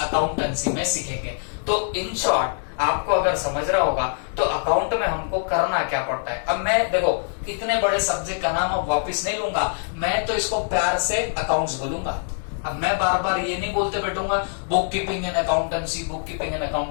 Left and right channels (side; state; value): right; silent; digital silence